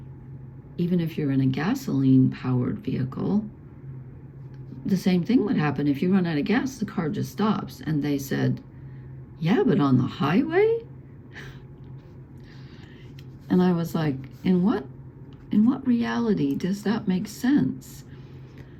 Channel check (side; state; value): both; identical; correlation 1.00